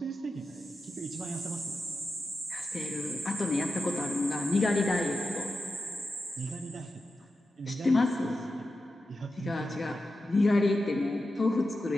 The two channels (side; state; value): both; normal; correlation 0.91